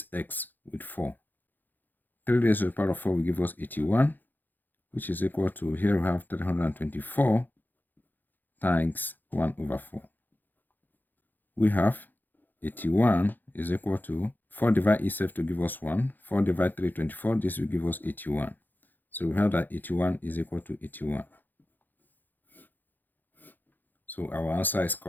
x with 4. 3 raised to the power of 4 will give us 81, which is equal to, here we have 324 times 1 over 4. We have 81 is equal to 4 divide itself to give us 1. 4 divide 324, this will give us 81. So we have that 81 is equal to 81. So our answer is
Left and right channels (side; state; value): right; late; 0.087 ms